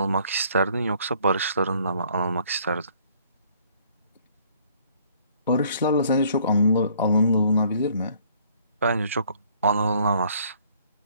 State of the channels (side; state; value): both; inverted; correlation -0.61